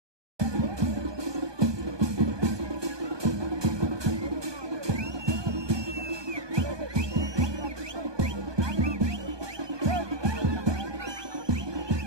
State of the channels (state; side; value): late; left; 1.2 ms